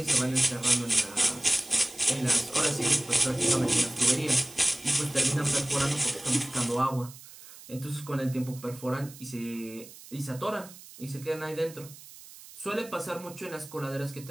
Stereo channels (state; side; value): noise; right; hiss, 18 dB below the sound